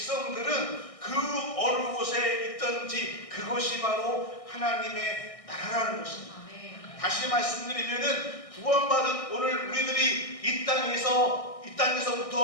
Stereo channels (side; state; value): right; late; 1.6 ms